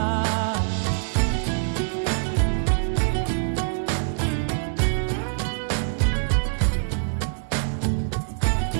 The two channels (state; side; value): silent; left; 62 dB below the other